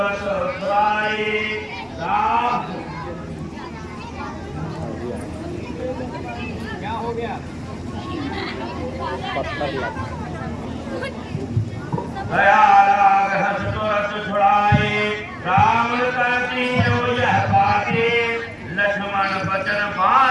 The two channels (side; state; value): both; identical; correlation 1.00